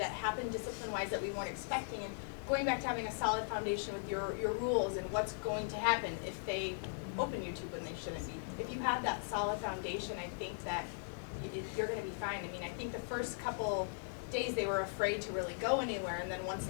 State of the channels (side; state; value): right; silent; digital silence